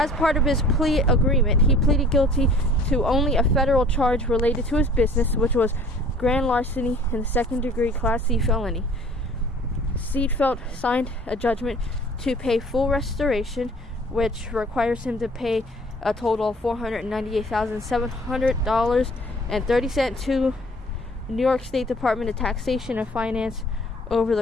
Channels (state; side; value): normal; both; correlation 0.51